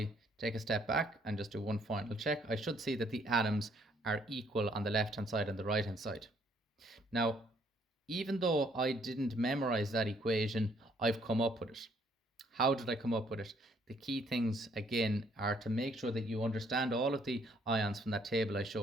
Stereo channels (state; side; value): normal; both; correlation 0.66